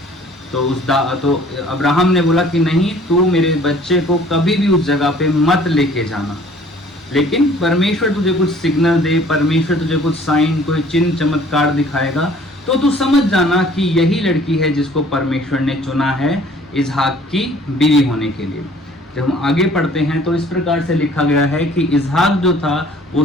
तो अब्राहम ने बोला कि नहीं, तू मेरे बच्चे को कभी भी उस जगह पे मत लेके जाना, लेकिन परमेश्वर तुझे कुछ सिग्नल दे, परमेश्वर तुझे कुछ साइन, कोई चिन्ह चमत्कार दिखाएगा तो तू समझ जाना कि यही लड़की है जिसको परमेश्वर ने चुना है इसहाक की बीवी होने के लिए। जब हम आगे पढ़ते हैं तो इस प्रकार से लिखा गया है कि इसहाक जो था वो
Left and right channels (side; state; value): both; normal; correlation 0.54